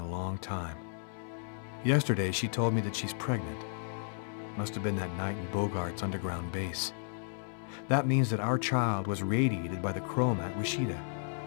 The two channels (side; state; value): right; silent; 56 dB below the other